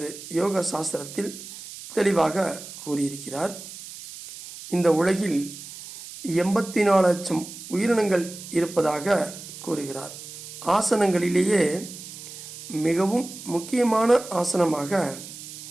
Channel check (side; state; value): right; noise; hiss, 13 dB below the sound